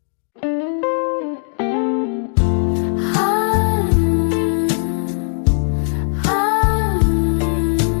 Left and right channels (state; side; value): silent; right; 64 dB below the other